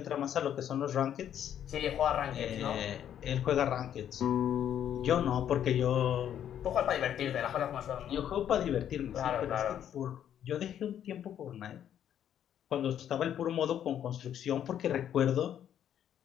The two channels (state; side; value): quieter; right; 10.0 dB